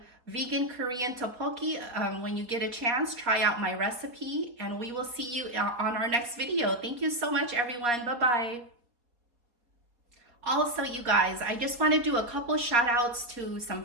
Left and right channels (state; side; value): late; left; 4.2 ms